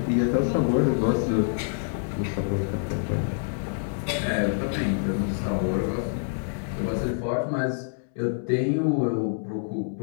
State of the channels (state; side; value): silent; right; digital silence